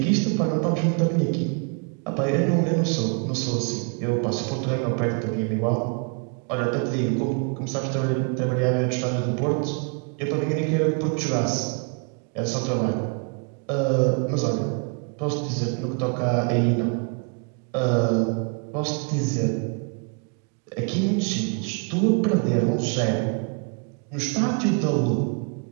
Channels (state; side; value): quieter; left; 37.4 dB